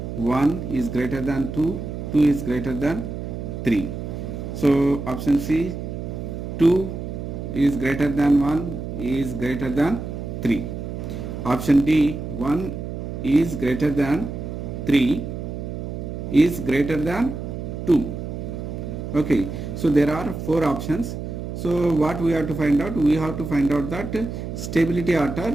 1 is greater than 2, 2 is greater than 3. So option C, 2 is greater than 1 is greater than 3. Option D, 1 is greater than 3 is greater than 2. Okay, so there are 4 options. So what we have to find out? We have to find out that stability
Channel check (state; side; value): noise; right; hum, 6 dB below the sound